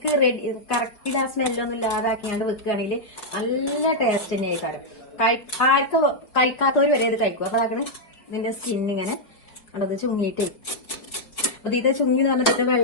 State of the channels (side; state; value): right; late; 4.9 ms